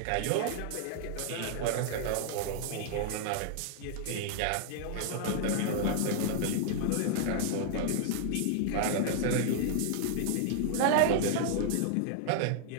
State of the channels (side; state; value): both; different; correlation -0.01